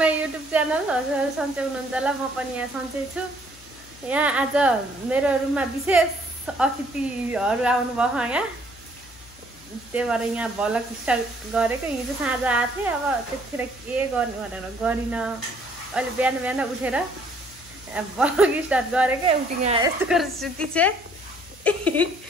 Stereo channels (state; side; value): noise; left; hum, 23 dB below the sound